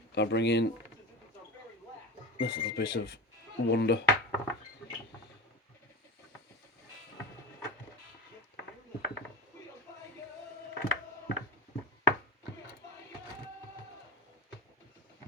I bring in this little bit of wonder.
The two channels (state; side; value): normal; both; correlation 0.23